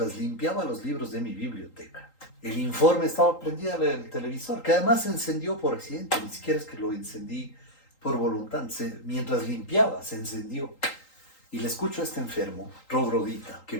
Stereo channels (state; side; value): late; right; 3.8 ms